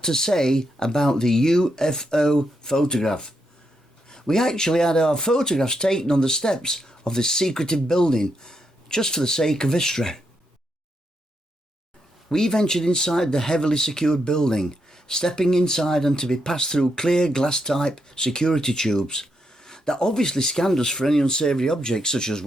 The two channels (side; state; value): both; normal; correlation 0.81